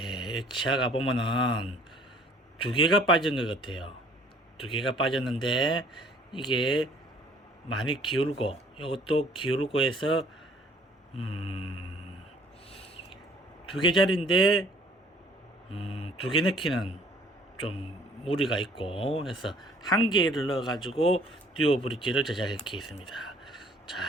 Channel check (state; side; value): normal; both; correlation 0.57